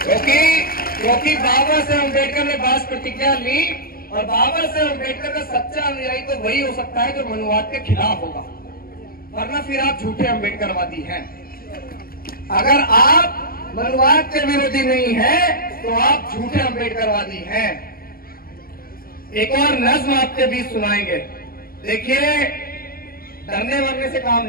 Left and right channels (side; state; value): right; late; 0.43 ms